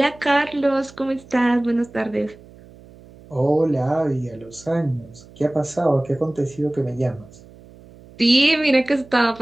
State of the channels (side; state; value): right; noise; hum, 23 dB below the sound